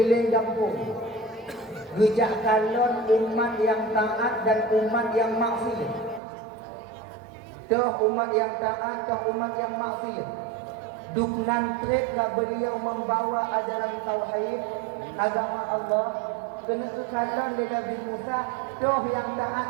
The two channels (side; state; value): left; drops out; at 6.2 s